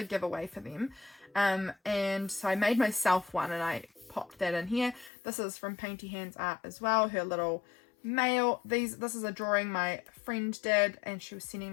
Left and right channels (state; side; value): drops out; right; at 5.1 s